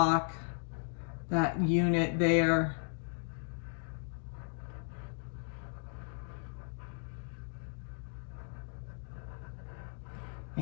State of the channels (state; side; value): silent; right; 54 dB below the other